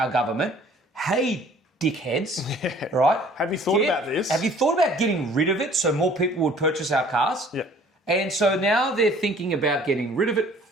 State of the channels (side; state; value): both; normal; correlation 0.53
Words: government, hey, dickheads, right? Have you thought about this? Have you thought about getting rid of it so more people would purchase our cars? Yeah. And so now they're thinking about getting rid of it